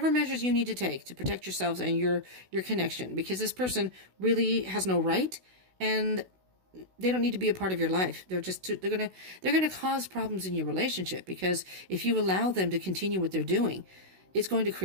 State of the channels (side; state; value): left; late; 16 ms